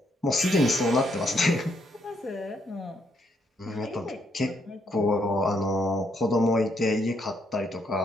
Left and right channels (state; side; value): normal; both; correlation 0.75